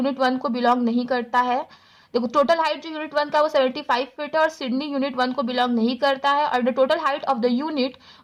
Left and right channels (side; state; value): both; identical; correlation 1.00